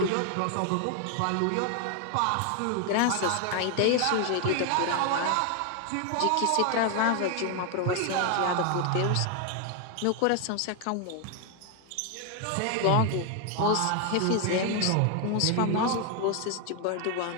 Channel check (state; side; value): different; both; correlation 0.01